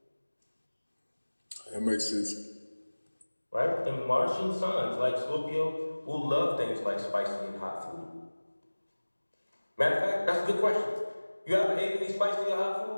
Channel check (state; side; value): inverted; both; correlation -1.00